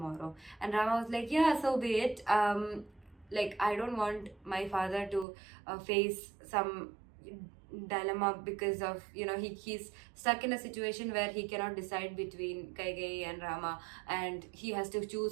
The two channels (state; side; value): drops out; left; at 5.2 s